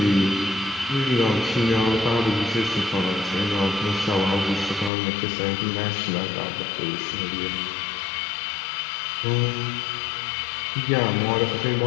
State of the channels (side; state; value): right; drops out; at 4.9 s